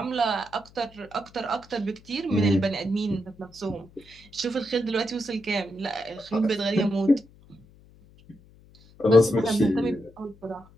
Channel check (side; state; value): left; noise; hum, 26 dB below the sound